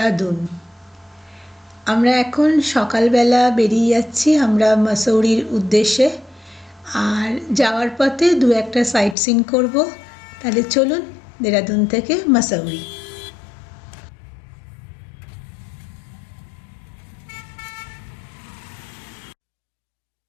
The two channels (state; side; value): drops out; right; at 9.2 s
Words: আমরা এখন সকালবেলা বেরিয়ে যাচ্ছি আমরা মাসৌরির উদ্দেশ্যে। আর যাওয়ার পথে দু একটা সাইট সিন করবো। তাহলে চলুন দেরাদুন থেকে মাসৌরি।